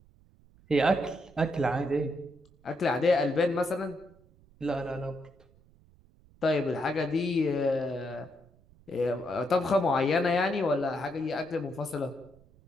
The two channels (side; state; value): right; noise; rumble, 28 dB below the sound